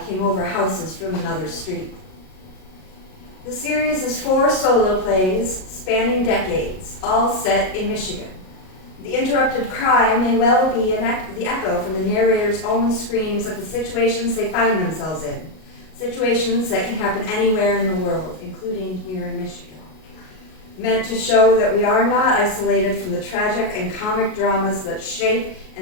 came over houses from another street. The series is 4 solo plays spanning decades, all set in Michigan. The interrupted cry may well be the echo from the narrator's own screams at the situations they find themselves in, situations that can happen anywhere in the world, including here in Michigan. Meant to show that we are not isolated from the tragic and comic dramas that shape,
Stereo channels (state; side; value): late; right; 38 ms